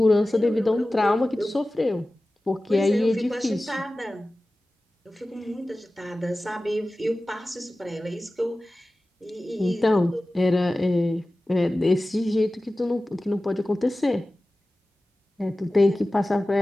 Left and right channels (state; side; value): normal; both; correlation 0.96